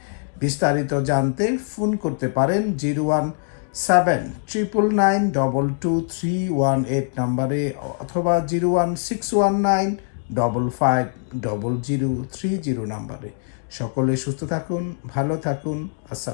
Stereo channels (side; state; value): right; silent; 64 dB below the other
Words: বিস্তারিত জানতে ফোন করতে পারেন 01799922318 নম্বরে, অথবা 01619550030 নম্বরে। সকলে সুস্থ থাকুন, ভালো থাকুন।